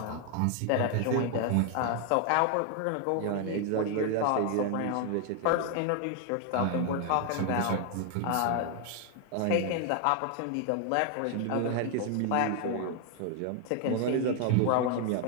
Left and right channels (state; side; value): different; both; correlation 0.00